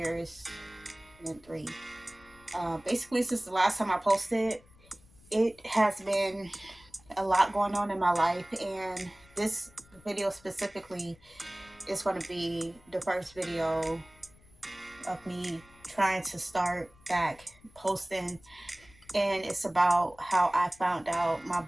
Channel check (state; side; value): noise; left; rumble, 27 dB below the sound